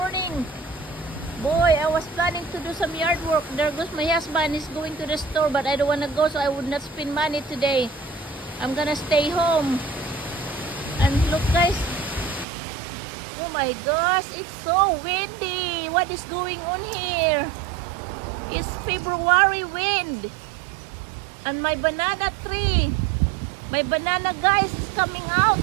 Boy, I was planning to do some yard work. There goes my husband. He's going to the store, but I don't want to go, so I would not spend money today. I'm gonna stay home. And look guys. Oh my gosh, it's so windy. What is going on here? It's February wind. And my banana tree. My banana guys is coming out.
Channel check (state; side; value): drops out; left; at 12.5 s